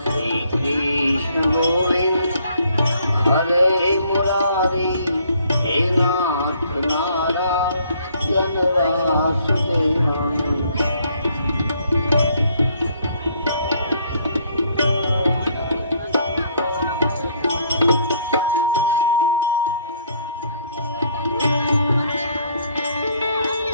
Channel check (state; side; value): inverted; both; correlation -0.64